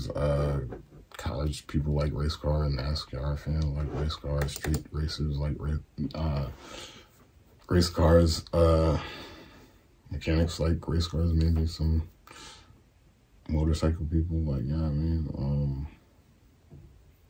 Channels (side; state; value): both; identical; correlation 1.00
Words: college people like race cars, NASCAR fans like race cars, street racers like race cars, mechanics like race cars, maybe some motorcycle people like, you know what I mean?